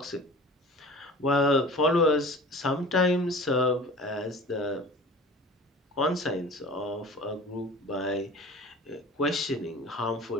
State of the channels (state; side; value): normal; both; correlation 0.41